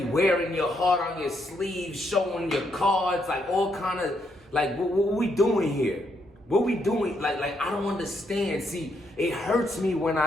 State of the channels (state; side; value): normal; both; correlation 0.77